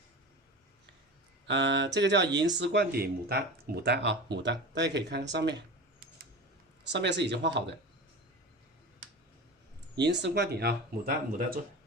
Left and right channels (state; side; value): normal; both; correlation 0.30